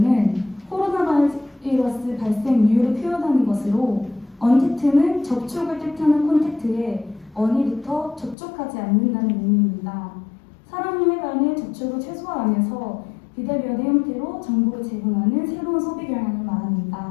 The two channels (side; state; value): right; drops out; at 8.3 s